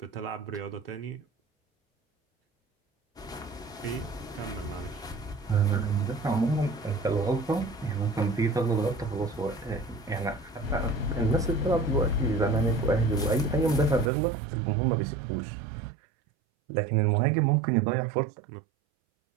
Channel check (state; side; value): drops out; left; at 14.1 s